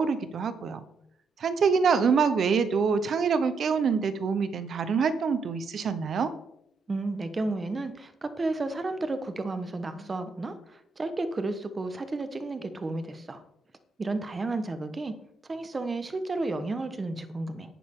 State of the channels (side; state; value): left; quieter; 4.5 dB